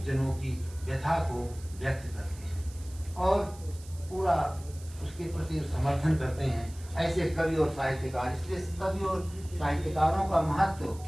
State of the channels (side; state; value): right; noise; hiss, 20 dB below the sound